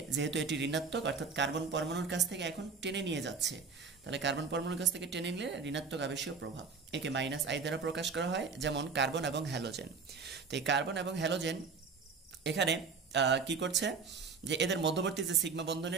যেহেতু এটি ঋণাত্মক অর্থাৎ কার্বন পরমাণুর কাছ থেকে এখন টেনে নিয়ে যাচ্ছে, তাহলে কার্বন পরমাণুর কাছ থেকে টেনে নিলে ঋণাত্মক আবেশীয় প্রভাব, একে মাইনাস আই দ্বারা প্রকাশ করা হয়। যেমন কার্বন এবং হ্যালোজেন। তো এই কার্বন এবং হ্যালোজেন এখানে কি করছে, যে এদের মধ্যবর্তী যে সিগমা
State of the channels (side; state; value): left; quieter; 5.1 dB